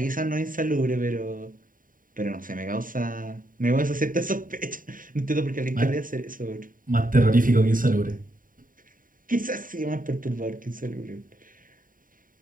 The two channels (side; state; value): left; late; 0.40 ms